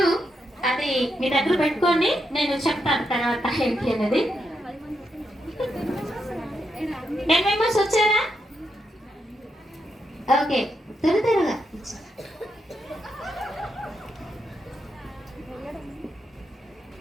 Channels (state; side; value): normal; both; correlation 0.83